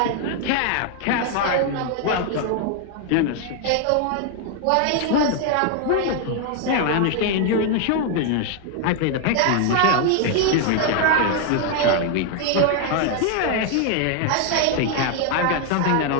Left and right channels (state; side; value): different; both; correlation 0.00